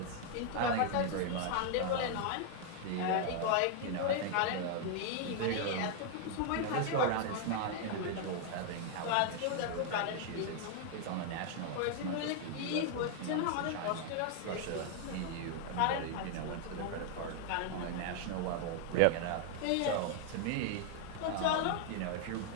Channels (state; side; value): different; both; correlation 0.00